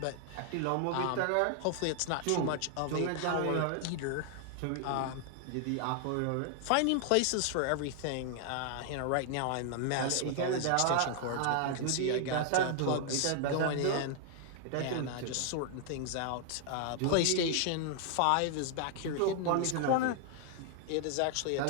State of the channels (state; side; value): different; both; correlation 0.00